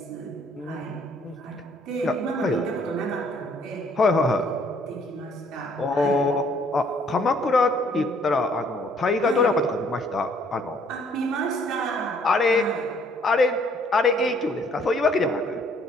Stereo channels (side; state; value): both; normal; correlation 0.63